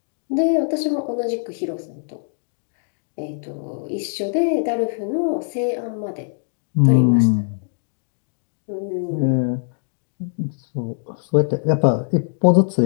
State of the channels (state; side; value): silent; right; digital silence